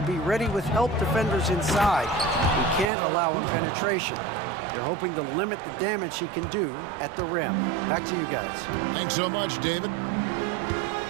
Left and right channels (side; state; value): left; drops out; at 2.9 s